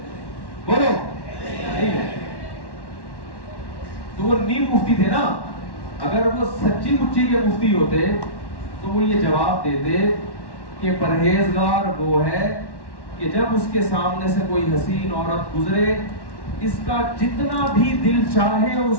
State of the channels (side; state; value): right; late; 1.1 ms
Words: بولو نہیں ہے. تو وہ نیم مفتی تھے نا. اگر وہ سچی مچی کے مفتی ہوتے تو وہ یہ جواب دیتے کہ پرہیزگار وہ ہے کہ جب اس کے سامنے سے کوئی حسین عورت گزرے اس کا جتنا بھی دل چاہے